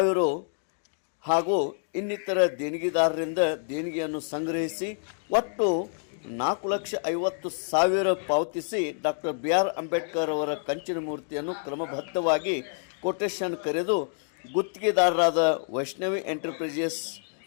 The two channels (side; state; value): right; silent; 60 dB below the other